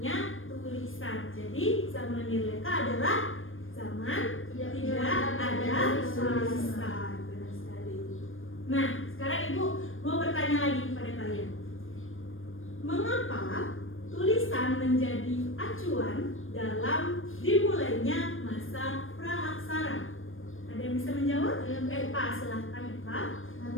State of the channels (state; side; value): late; right; 0.59 ms